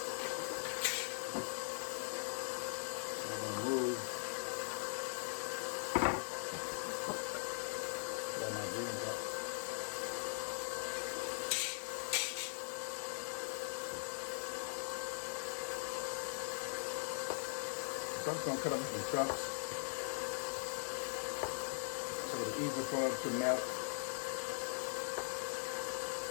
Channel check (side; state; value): right; silent; digital silence